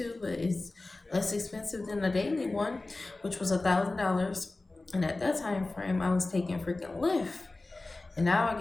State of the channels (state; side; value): quieter; right; 3.1 dB